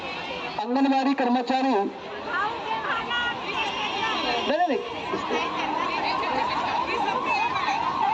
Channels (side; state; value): both; identical; correlation 1.00